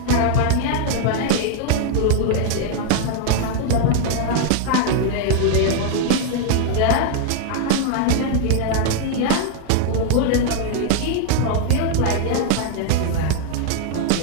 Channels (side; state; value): both; different; correlation 0.00